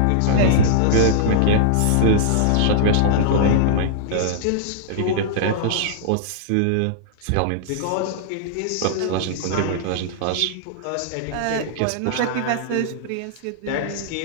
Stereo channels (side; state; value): both; different; correlation -0.01